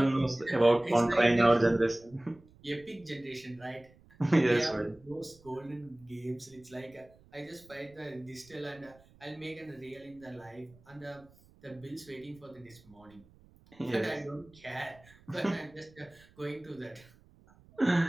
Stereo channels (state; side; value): noise; right; rumble, 27 dB below the sound